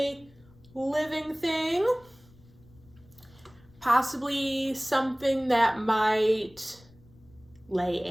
living thing. Possibly something that might lay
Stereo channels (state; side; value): noise; left; rumble, 27 dB below the sound